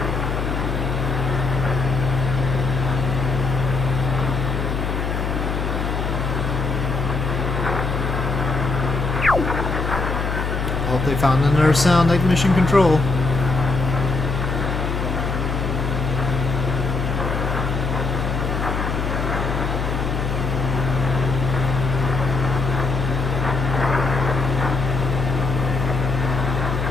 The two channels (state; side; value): noise; left; hum, 1 dB below the sound